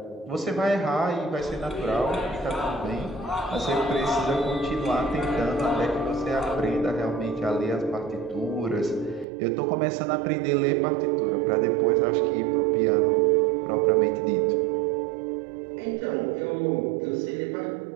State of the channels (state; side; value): drops out; left; at 9.2 s